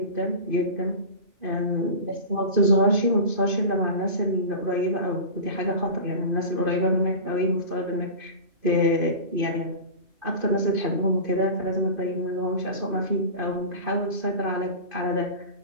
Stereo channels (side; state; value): left; late; 2.5 ms